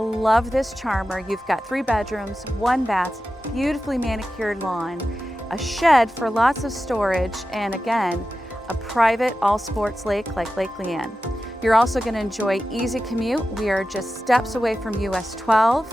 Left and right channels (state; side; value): normal; both; correlation 0.93